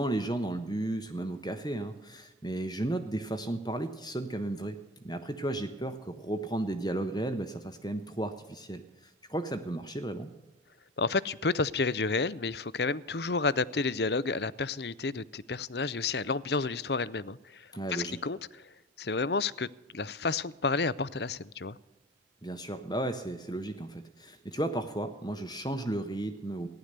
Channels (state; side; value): normal; both; correlation 0.33